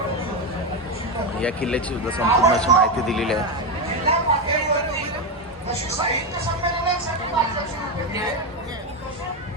या किल्ल्याची सुद्धा संपूर्ण अशी माहिती दिलेली आहे.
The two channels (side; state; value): both; normal; correlation 0.10